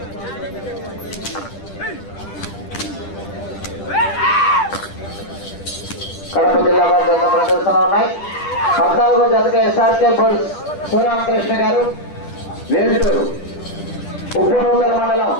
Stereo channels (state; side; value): late; right; 10 ms